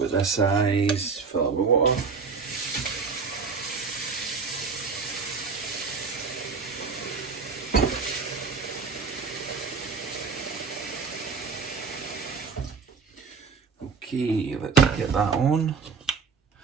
this size, fill it with water. Okay, let's get that on.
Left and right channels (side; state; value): left; quieter; 5.1 dB